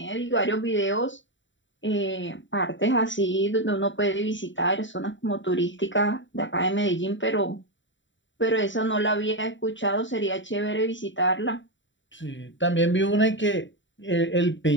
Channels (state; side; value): late; right; 0.54 ms